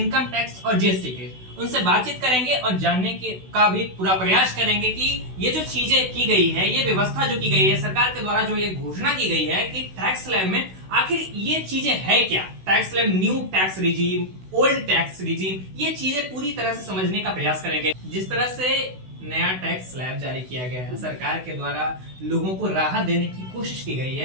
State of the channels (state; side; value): late; left; 16 ms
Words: टैक्स और जीएसटी के, उनसे बातचीत करेंगे और जानने का भी पूरा प्रयास करेंगे कि ये जो चीजें की गई है, ये व्यवस्था जो की गई है सरकार के द्वारा, जो ये घोषणा की गई है कि टैक्स स्लैब में आखिर ये चीजें है क्या। Tax slab, new tax regime, old tax regime, ये चीजें पूरी तरह से समझने का प्रयास करेंगे। जिस तरह से नया टैक्स स्लैब जारी किया गया है सरकार के द्वारा, लोगों को राहत देने की कोशिश की गई